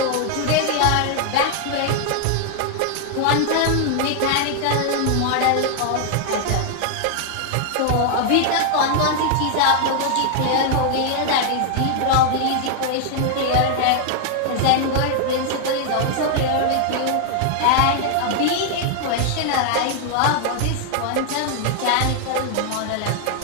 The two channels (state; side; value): different; both; correlation 0.00